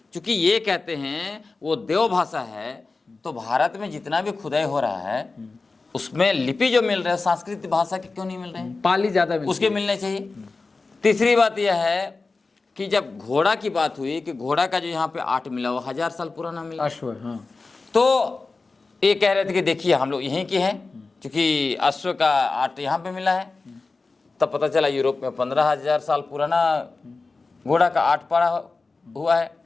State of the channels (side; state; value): right; quieter; 3.8 dB